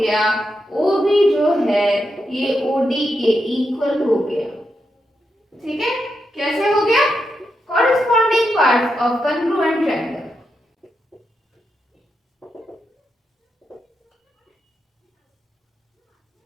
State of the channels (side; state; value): both; normal; correlation 0.85